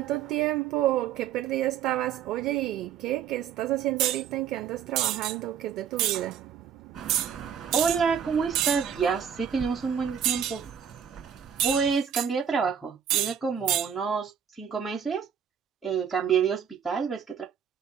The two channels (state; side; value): quieter; left; 8.2 dB